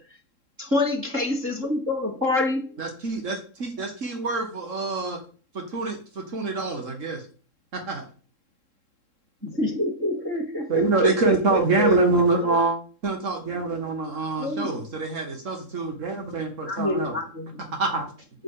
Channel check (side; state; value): left; late; 3.7 ms